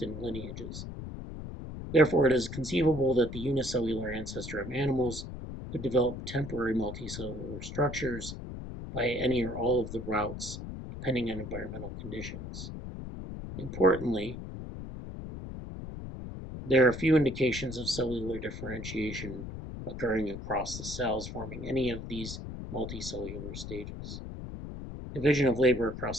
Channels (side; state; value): left; noise; rumble, 9 dB below the sound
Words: and lineages. Therefore, it is conceivable that the unicellular ancestor of animals could develop temporary multicellular structures by any or all of the routes, depending on environmental conditions. Importantly, there are few indications of cellular differentiation occurring across the cells forming any of these multicellular stages. Division of labor